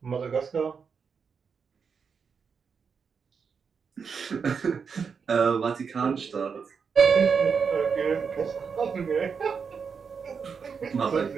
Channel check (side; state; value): left; quieter; 6.0 dB